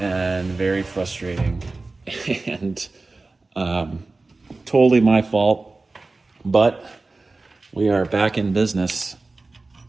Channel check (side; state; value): left; quieter; 3.5 dB